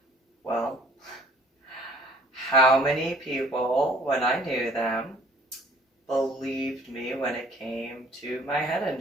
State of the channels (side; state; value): both; normal; correlation 0.55